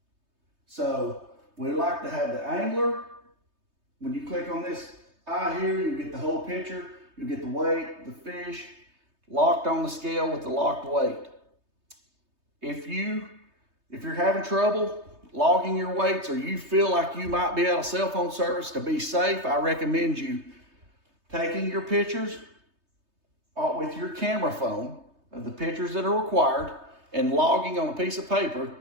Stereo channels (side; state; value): left; late; 3.2 ms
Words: So we like to have the angler. When you click on this eye here, you get the whole picture. You get the weight, the fish, locked on the scale with the locked weight. If you're having trouble logging your weights, or you feel like you might be out of cell phone service, to be safe, I recommend you taking your pictures with your camera phone of the pictures that are required and logging on a piece of paper